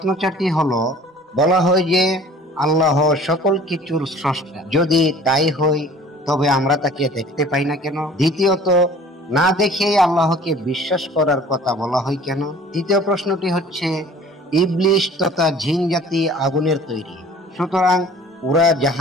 4টি হলো, বলা হয় যে আল্লাহ সকল কিছুর স্রষ্টা, যদি তাই হয় তবে আমরা তাকে দেখতে পাই না কেন? দ্বিতীয়ত, না দেখেই আল্লাহকে বিশ্বাস করার কথা বলা হয় কেন? তৃতীয় প্রশ্নটি হচ্ছে, ইবলিশ তথা জিন জাতি আগুনের তৈরি, সুতরাং ওরা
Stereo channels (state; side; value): normal; both; correlation 0.49